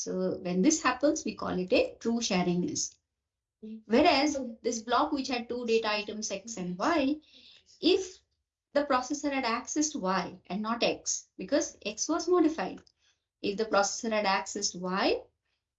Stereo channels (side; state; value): both; identical; correlation 1.00